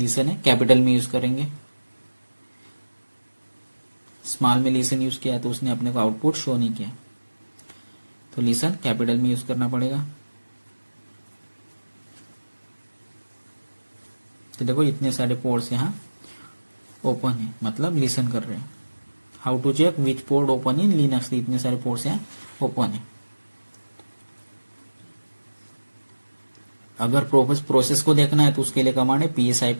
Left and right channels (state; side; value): inverted; both; correlation -1.00